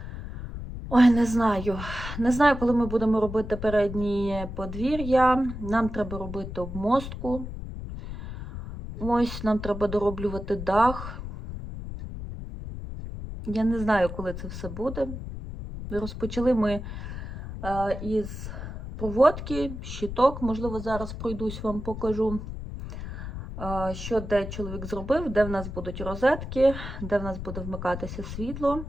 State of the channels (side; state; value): left; noise; rumble, 8 dB below the sound